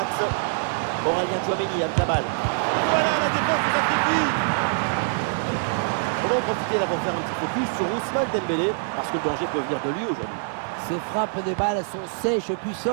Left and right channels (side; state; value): left; silent; digital silence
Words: Aurélien Tchouameni avec la balle. Voilà, la défense se sacrifie. On va en profiter là pour faire un petit focus sur Ousmane Dembélé, parce que le danger peut venir de lui aujourd'hui. Ces frappes de balles sont sèches,